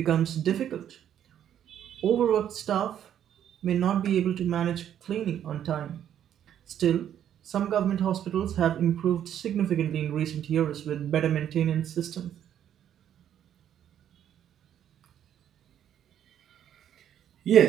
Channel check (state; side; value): quieter; left; 10.1 dB